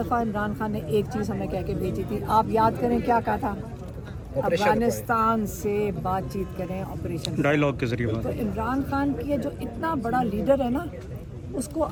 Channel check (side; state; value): both; identical; correlation 1.00